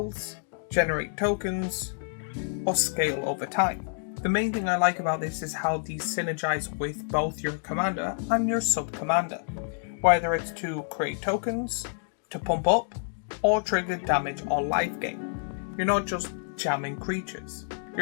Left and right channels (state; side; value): silent; right; digital silence